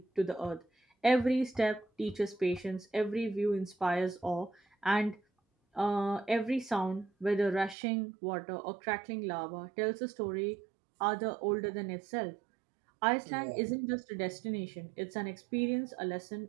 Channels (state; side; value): drops out; left; at 7.8 s